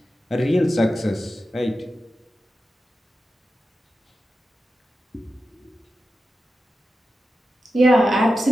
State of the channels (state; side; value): normal; both; correlation 0.92